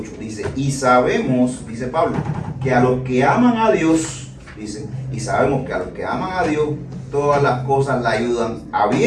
Dice, y sabemos, dice Pablo, que a los que aman a Dios, dice, y sabemos que a los que aman a Dios, todas las cosas le ayudan a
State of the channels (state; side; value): identical; both; correlation 1.00